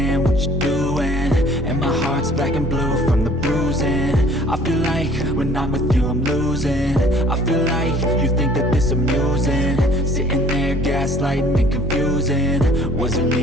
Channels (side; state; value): both; normal; correlation 0.54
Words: what you're doing, and my heart's black and blue from the bruising. I feel like when I'm with you I'm losing. I feel like you think that this amusing, sitting there gaslighting and confusing. Was it